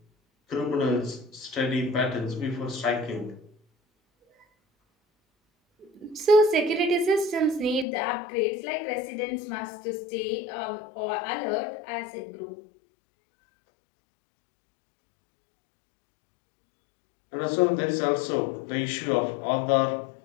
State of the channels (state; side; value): drops out; right; at 7.9 s